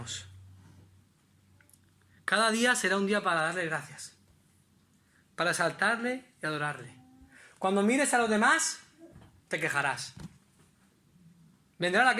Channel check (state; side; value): identical; both; correlation 1.00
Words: Cada día será un día para darle gracias, para exaltarle y adorarle. Cuando mires a los demás, te quejarás. ¿Vendrá la